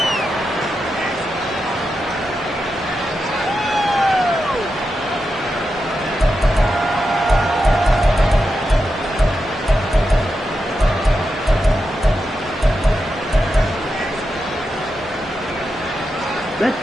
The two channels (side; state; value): both; normal; correlation 0.88